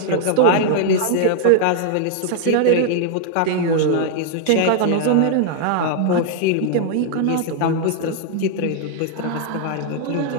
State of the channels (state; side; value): different; both; correlation 0.00